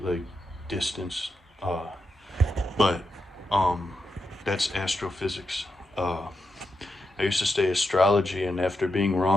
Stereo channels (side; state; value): both; normal; correlation 0.86